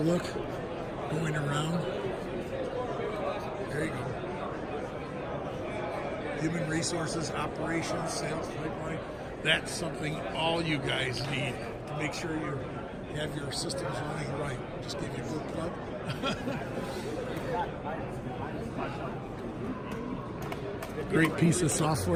going around. There you go. Human resources, operations, sales pipeline. That's something all you guys need to make sure you have your systems running right. Just give you a good plug. Great piece of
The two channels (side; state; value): both; identical; correlation 1.00